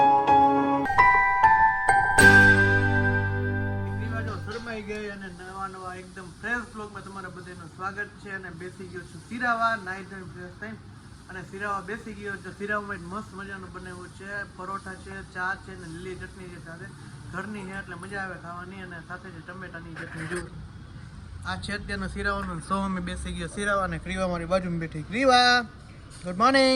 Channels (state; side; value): identical; both; correlation 1.00